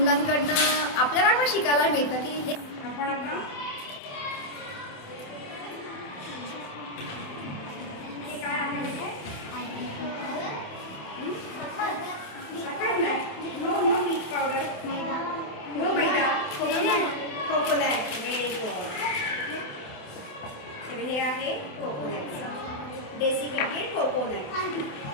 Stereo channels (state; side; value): late; right; 28 ms